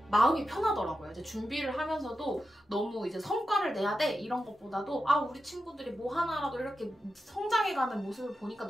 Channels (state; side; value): normal; both; correlation 0.90